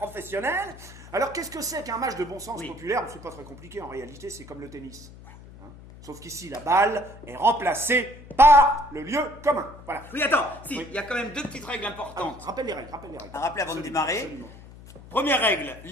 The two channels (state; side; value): noise; left; hum, 18 dB below the sound